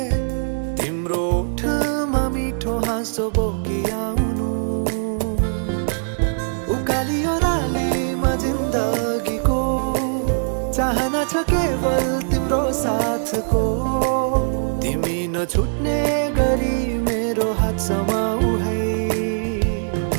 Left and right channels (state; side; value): silent; left; digital silence